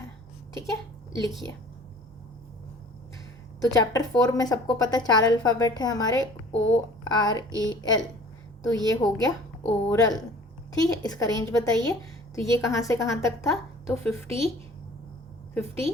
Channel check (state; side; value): normal; both; correlation 0.48